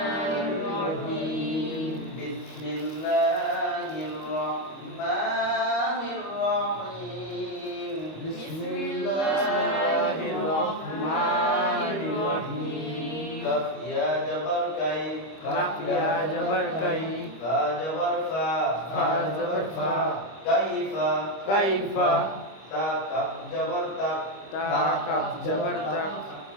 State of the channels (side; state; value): right; late; 25 ms